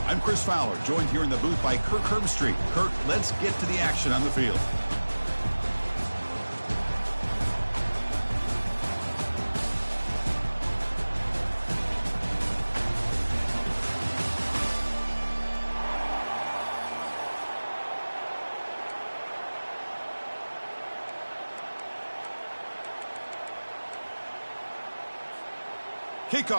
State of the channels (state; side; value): inverted; both; correlation -1.00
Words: I'm Chris Fowler, joined here in the booth by Kirk Herbstreit. Kirk, let's get to the action on the field.